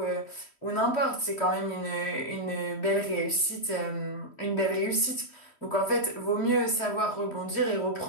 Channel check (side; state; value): right; late; 3.1 ms